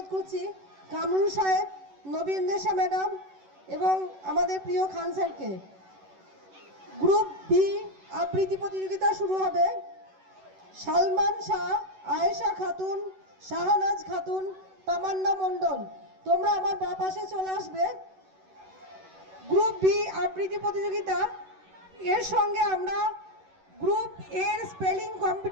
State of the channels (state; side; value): late; left; 11 ms